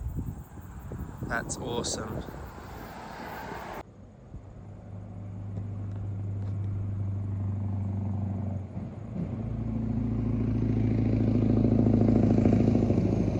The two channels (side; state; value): both; identical; correlation 1.00